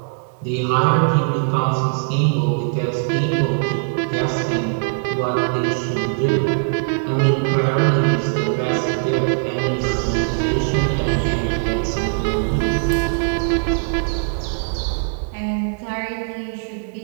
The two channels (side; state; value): left; silent; digital silence